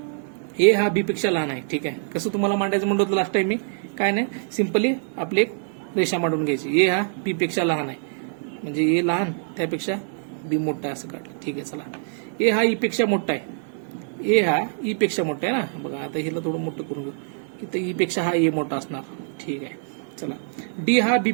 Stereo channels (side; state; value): left; silent; digital silence